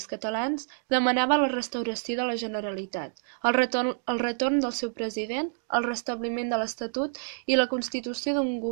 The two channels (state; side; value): silent; left; digital silence